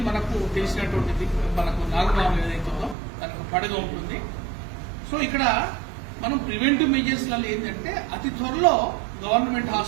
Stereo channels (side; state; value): left; drops out; at 3.0 s